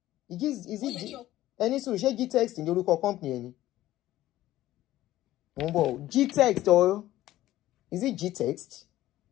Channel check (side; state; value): right; quieter; 14.8 dB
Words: Is it G? Any solution G-Text in the local company? G-Text or is it G-Text?